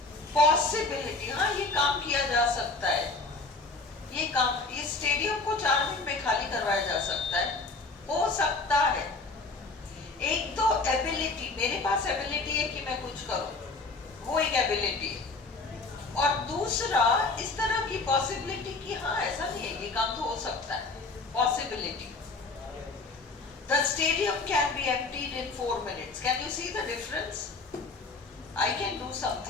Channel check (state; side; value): quieter; right; 3.6 dB